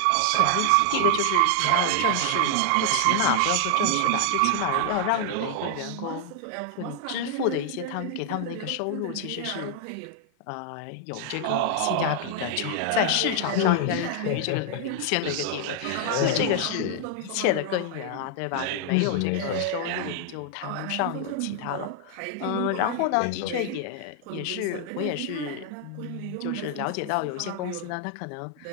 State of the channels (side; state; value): both; different; correlation 0.00